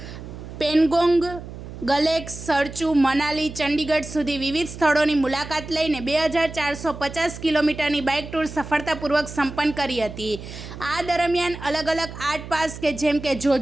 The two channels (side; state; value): right; noise; hum, 12 dB below the sound